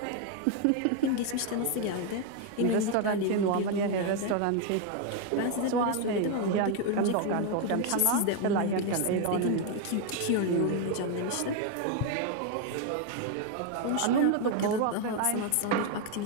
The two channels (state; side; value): different; both; correlation 0.01